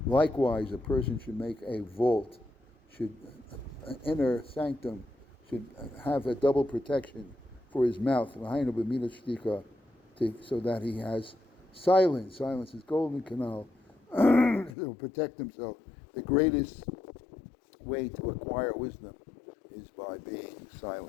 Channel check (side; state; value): right; drops out; at 14.8 s